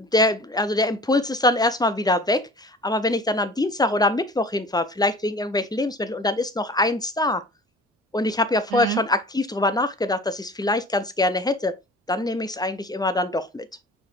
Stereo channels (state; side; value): normal; both; correlation 0.42